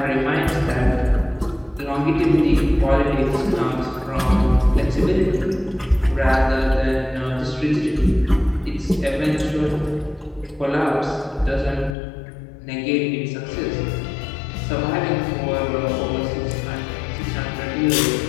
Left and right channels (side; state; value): right; drops out; at 12.0 s